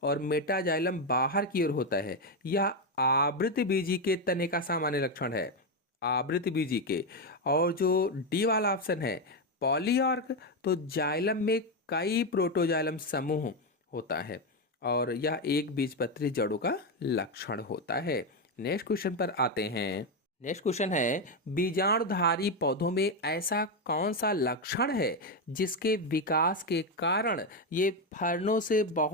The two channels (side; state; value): both; normal; correlation 0.08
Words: और मेटाजाइलम बाहर की ओर होता है। यह आवृत बीजी के तने का सामान्य लक्षण है, आवृत बीजी के। और जो डी वाला ऑप्शन है पॉलीआर्क, तो जाइलम में कई प्रोटोजाइलम समूह होता है और यह एक बीजपत्री जड़ों का लक्षण होता है। नेक्स्ट क्वेश्चन पर आते हैं। नेक्स्ट क्वेश्चन है, बीजाणुधारी पौधों में ऐसा कौन सा लक्षण है जिसके विकास के कारण ये फर्नों से